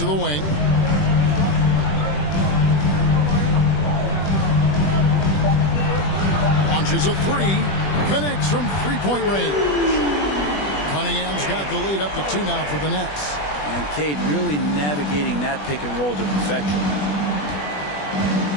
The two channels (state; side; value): late; right; 20 ms